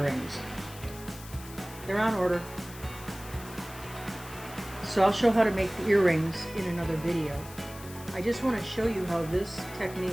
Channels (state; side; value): noise; left; hiss, 17 dB below the sound